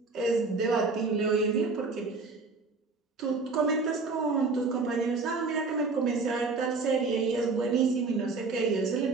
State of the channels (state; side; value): quieter; left; 4.1 dB